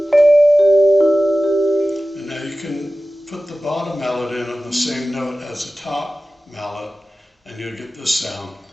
Put the bottom mallet in on the same note as the top mallet, and you'll get this sound.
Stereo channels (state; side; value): normal; both; correlation 0.95